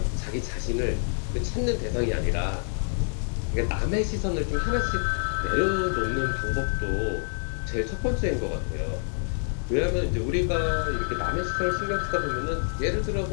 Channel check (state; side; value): silent; right; 60 dB below the other